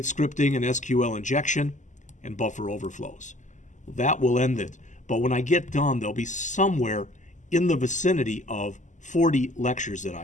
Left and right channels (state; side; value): late; right; 0.36 ms